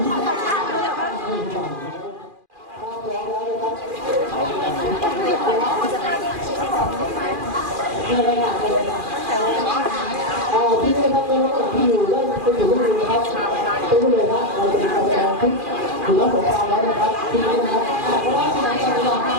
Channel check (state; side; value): late; left; 2.4 ms